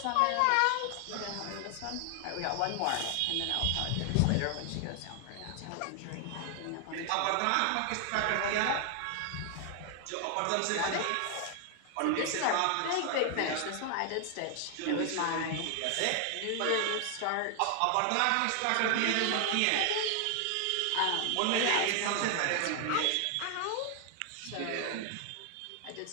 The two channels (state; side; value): different; both; correlation 0.00